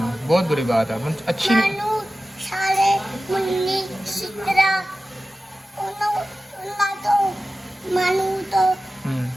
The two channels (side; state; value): both; normal; correlation 0.95